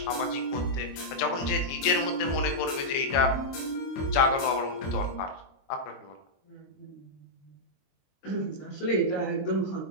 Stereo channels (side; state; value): right; late; 22 ms